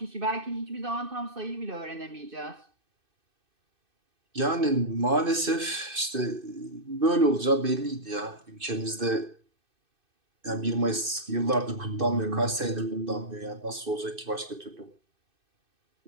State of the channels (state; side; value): late; left; 2.6 ms